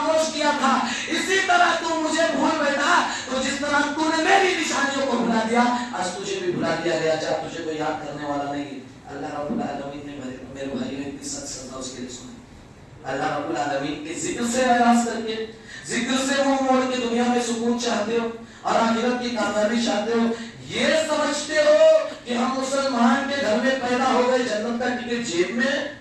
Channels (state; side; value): identical; both; correlation 1.00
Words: کیا تھا، اسی طرح تم مجھے بھول بیٹھا، تو جس طرح تم نے میری نشانیوں کو بھلا دیا، آج تجھے بھی بھلا دیا گیا، جب تجھے کوئی یاد کرنے والا نہیں ہے۔ اللہ رب العالمین نے میرے بھائیوں کی سچ سزا اس کے لیے سنی۔ اللہ رب العالمین کے ذکر سے اعراض کر کے، ذکر سے منہ موڑ کے دنیا میں سکون چاہتے ہو اور آخرت کی کامیابی چاہتے ہو، یہ سمجھتے ہو کہ ہم مسلمان کے گھر میں پیدا ہو گئے، جنت کا ٹکٹ جیب میں،